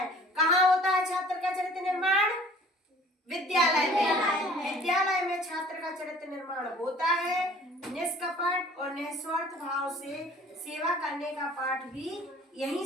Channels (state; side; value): normal; both; correlation 0.50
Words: कहाँ होता है छात्र का चरित्र निर्माण? विद्यालय में। विद्यालय में छात्र का चरित्र निर्माण होता है। निष्कपट और निस्वार्थ भाव से सेवा करने का पाठ भी यहीं